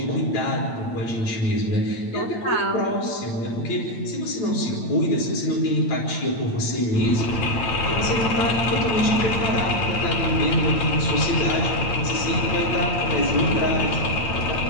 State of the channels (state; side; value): late; right; 8.8 ms